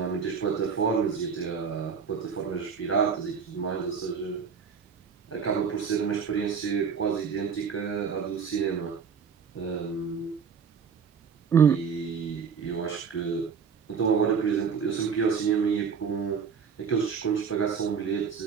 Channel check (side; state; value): left; quieter; 6.3 dB